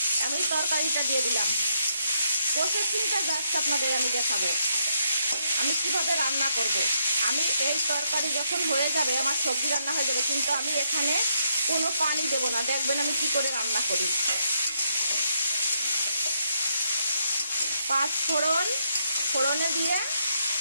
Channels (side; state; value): both; inverted; correlation -0.76